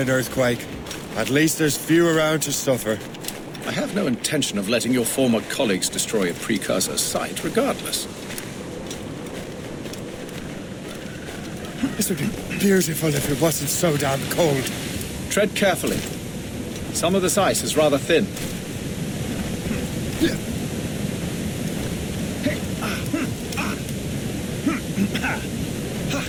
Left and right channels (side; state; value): both; identical; correlation 1.00